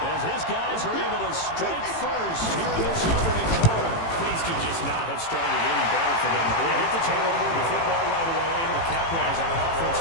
his guys are able to strike first here in this opening quarter. Things could just not have started any better for them. They get the turnover, the football right away, able to capitalize on offense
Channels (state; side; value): late; right; 18 ms